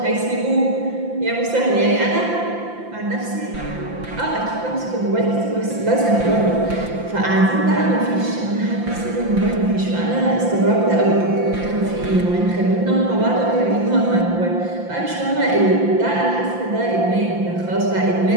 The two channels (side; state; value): left; late; 5.8 ms